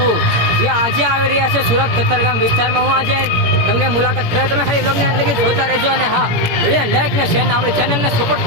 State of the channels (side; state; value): left; late; 17 ms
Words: જે આજે આવી રહ્યા છે સુરત કતારગામ વિસ્તારમાં. હું આજે તમને મુલાકાત કરાવું, તમે ખાલી બ્લોગને અંદર જોતા રહેજો. અને હા, વિડીયો લાઈક ને શેર ને આપણી ચેનલને સપોર્ટ